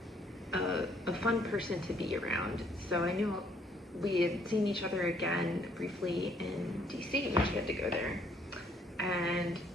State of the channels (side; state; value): both; normal; correlation 0.66